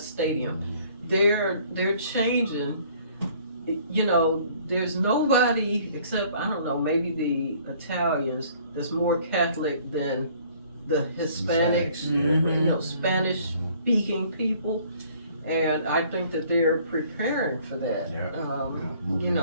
They're changing. You know, there's nobody except, I don't know, maybe the Italians that's more Catholic than the Hispanics, you know, Spanish speaking people. And I think that they're preparing for that. You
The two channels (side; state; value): both; inverted; correlation -0.57